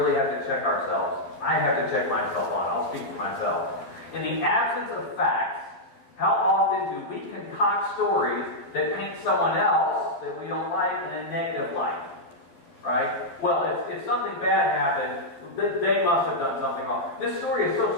have to check ourselves. I have to check myself on. I'll speak for myself. In the absence of facts, how often do we concoct stories that paint someone else that we don't like in a negative light? Right? Well, if something bad happened, they must have done something wrong. This story is so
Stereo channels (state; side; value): late; right; 12 ms